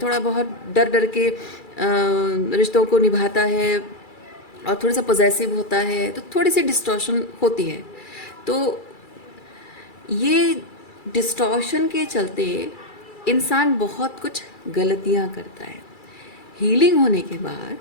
थोड़ा बहुत डर डर के रिश्तों को निभाता है और थोड़ा सा पॉजेसिव होता है, तो थोड़ी सी डिस्टॉर्शन होती है। तो ये डिस्टॉर्शन के चलते इंसान बहुत कुछ गलतियां करता है। हीलिंग होने के बाद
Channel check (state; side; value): late; right; 2.3 ms